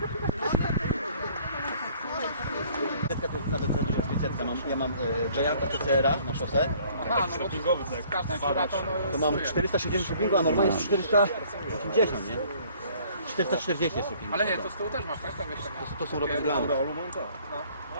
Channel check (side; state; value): both; inverted; correlation -0.56